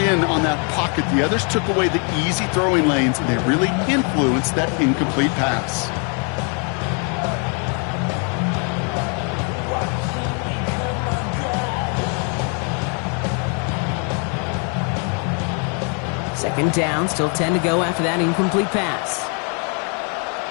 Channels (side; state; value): right; quieter; 38.8 dB